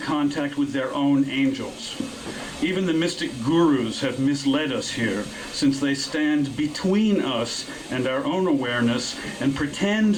with their own angels. Even the mystic gurus have misled us here, since they stand between us and our own awareness and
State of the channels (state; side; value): identical; both; correlation 1.00